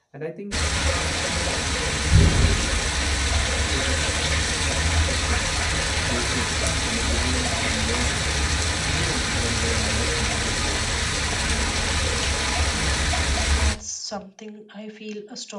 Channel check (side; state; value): both; identical; correlation 1.00